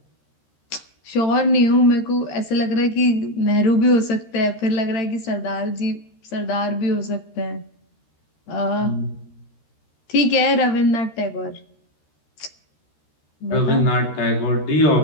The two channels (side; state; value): right; late; 13 ms